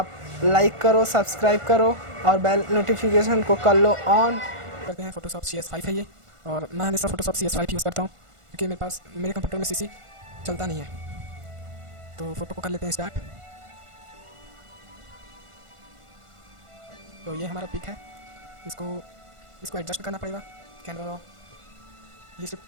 लाइक करो, सब्सक्राइब करो और बेल नोटिफिकेशन को कर लो ऑन। करते हैं फ़ोटोशॉप CS5 है ये, और मैं हमेशा फ़ोटोशॉप CS5 यूज़ करता हूँ क्योंककि मेरे पास मेरे कंप्यूटर में CC चलता नहीं है। तो फ़ोटो को कर लेते हैं स्टार्ट। तो ये हमारा पिक है, इसको एडजस्ट करना पड़ेगा। कैमरा ये सिर्फ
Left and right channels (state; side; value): late; left; 1.5 ms